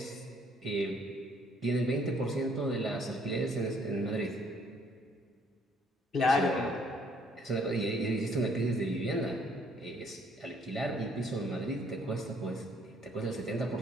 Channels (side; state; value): both; normal; correlation 0.64